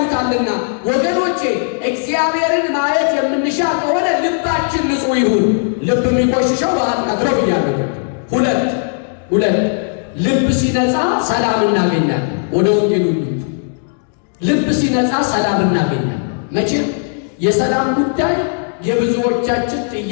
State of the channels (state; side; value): silent; right; digital silence